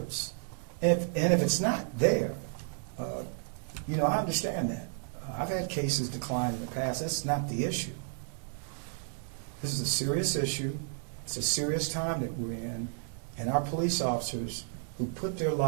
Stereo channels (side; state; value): left; silent; digital silence